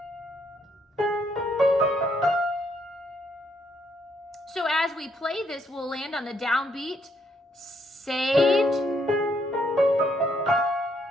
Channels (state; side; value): normal; both; correlation 0.72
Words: So as we play this, we'll land on the downbeat, saved.